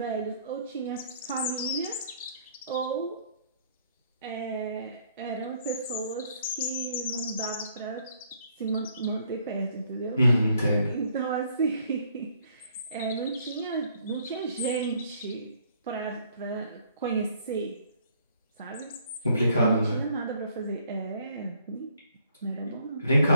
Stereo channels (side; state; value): both; inverted; correlation -0.64